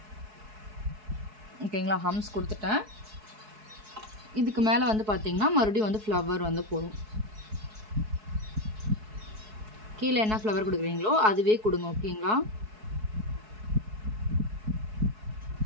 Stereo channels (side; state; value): left; late; 4.7 ms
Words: ஓகேங்களா. ஹம்ஸ் கொடுத்துட்டேன். இதுக்கு மேலே வந்து பார்த்திங்கன்னா மறுபடியும் வந்து ஃப்ளவர் வந்து போடும். கீழே என்ன ஃப்ளவர் கொடுக்குறீங்களோ அதுவே கொடுங்க ஓகேங்களா.